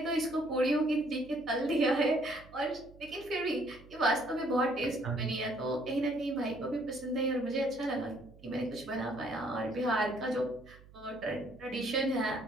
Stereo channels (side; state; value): right; noise; hum, 22 dB below the sound